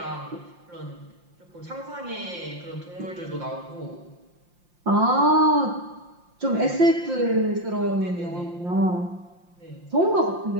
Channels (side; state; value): left; late; 5.7 ms